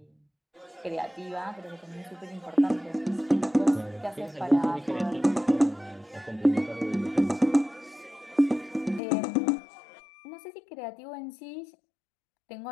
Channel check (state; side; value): drops out; right; at 9.0 s